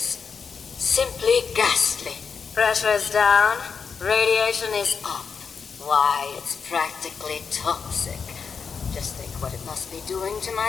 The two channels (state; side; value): quieter; right; 5.9 dB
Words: Simply ghastly. Pressure is down, radiation is up. Why, it's practically toxic. Just think what it must be doing to